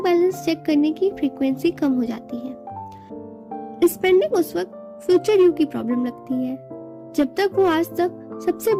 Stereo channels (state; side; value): identical; both; correlation 1.00